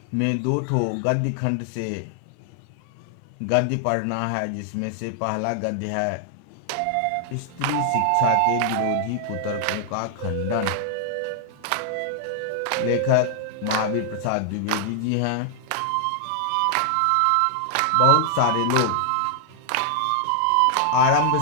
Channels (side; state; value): both; different; correlation -0.01